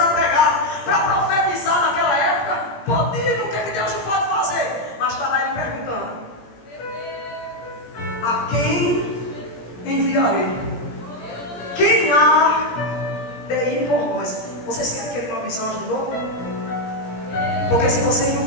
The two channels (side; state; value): right; late; 17 ms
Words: pregar, para profetizar naquela época. Podia, o que é que Deus não pode fazer? Mas está lá ele perguntando: a quem enviarei? Quem há de ir por nós? Vocês querem que ele mande os anjos de novo? Porque se você não